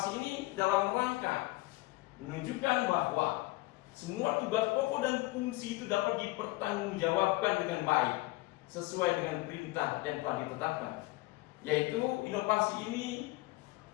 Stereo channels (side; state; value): right; quieter; 21.1 dB